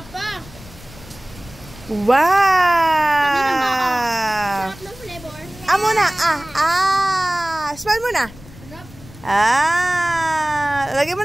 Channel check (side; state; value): left; noise; rumble, 20 dB below the sound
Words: Wow! Sarap ng flavor. Muna. Smile muna. Lagyan mo